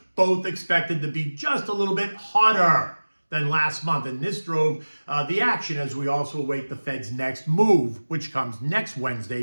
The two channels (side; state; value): both; inverted; correlation -1.00